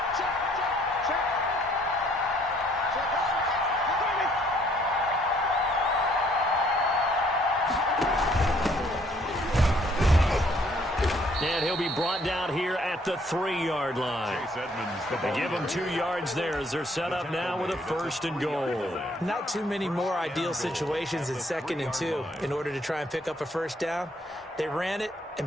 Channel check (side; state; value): both; normal; correlation 0.64